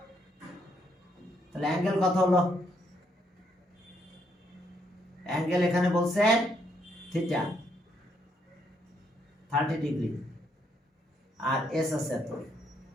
তাহলে অ্যাঙ্গেল কত হলো, অ্যাঙ্গেল এখানে বলছে থিটা 30 ডিগ্রি, আর এস আছে এত,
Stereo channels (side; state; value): both; normal; correlation 0.74